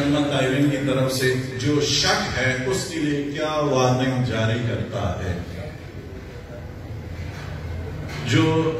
قائلین کی طرف سے جو شک ہے اس کے لیے کیا وارننگ جاری کرتا ہے. جو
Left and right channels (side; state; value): both; identical; correlation 1.00